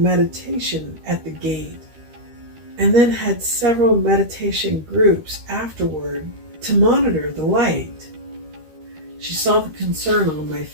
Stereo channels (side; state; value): left; late; 13 ms